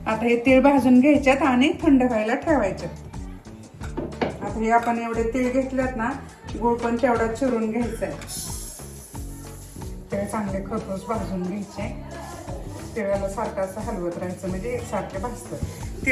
आता हे तीळ भाजून घ्यायच्यात आणि थंड व्हायला ठेवायचे. आता हे आपण एवढे तीळ घेतलेत ना, गूळ पण तेवढा चिरून घ्यायचा आहे. ते चांगले खरपूस भाजून घ्यायचे. तिळाला सारखं असं हलवत राहायचं म्हणजे एकसारखे भाजतात.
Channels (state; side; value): identical; both; correlation 1.00